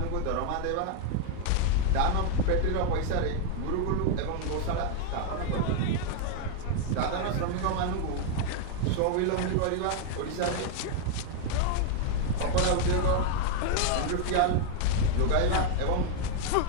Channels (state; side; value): different; both; correlation 0.00